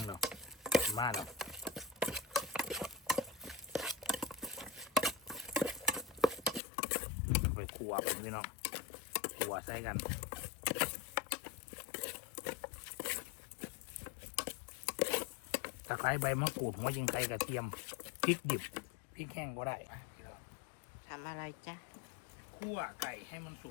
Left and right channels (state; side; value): drops out; right; at 6.6 s